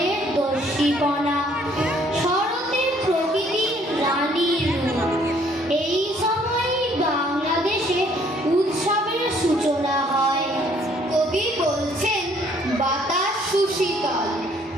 দর্শীপনা। শরতের প্রকৃতির রানীর রূপ। এই সময়ই বাংলাদেশে উৎসবের সূচনা হয়। কবি বলছেন, বাতাস সুশীতল,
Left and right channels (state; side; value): normal; both; correlation 0.62